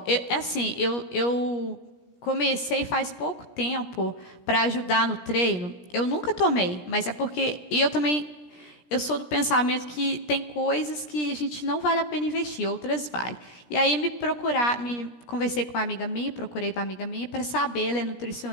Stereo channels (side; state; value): right; late; 17 ms